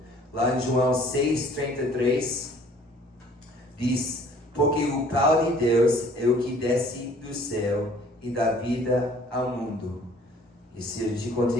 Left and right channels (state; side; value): normal; both; correlation 0.55